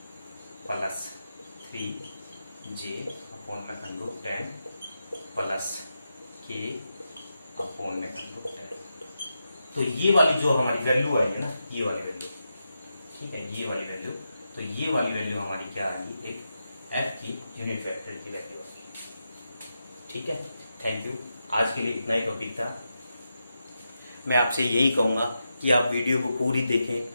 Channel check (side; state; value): both; inverted; correlation -0.87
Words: प्लस 3j अपॉन में √10 प्लस k अपॉन में √10। तो ये वाली जो हमारी वैल्यू आई है ना, ये वाली वैल्यू, ठीक है, ये वाली वैल्यू, तो ये वाली वैल्यू हमारी क्या आएगी, एक एफ की यूनिट वेक्टर की वैल्यू आएगी, ठीक है। थैंक यू, आज के लिए इतना ही टॉपिक था। मैं आपसे यही कहूंगा कि आप वीडियो को पूरी